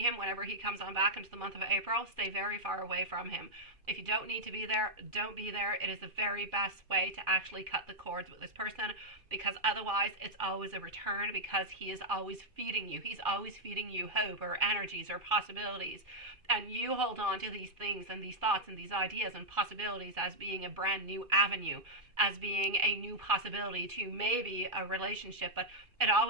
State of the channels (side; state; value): left; late; 2.4 ms